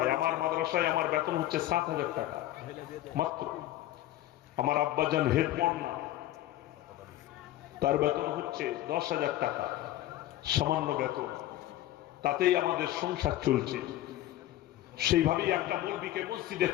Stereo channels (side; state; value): right; quieter; 14.4 dB